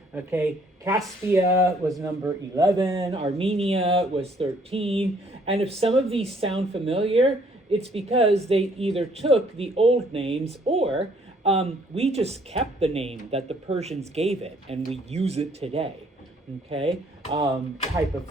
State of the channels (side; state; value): both; normal; correlation 0.63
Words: okay. Caspia was number 11. Armenia was 13. And if some of these sound familiar, it's because they either took the old names or we just kept the name that the Persians gave it and we use it today, okay, type of